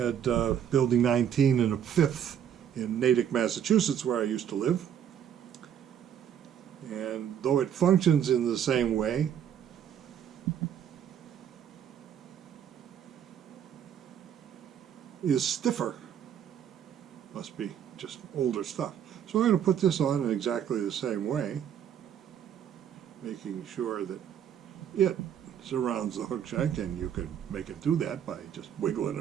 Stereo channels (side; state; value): left; quieter; 9.2 dB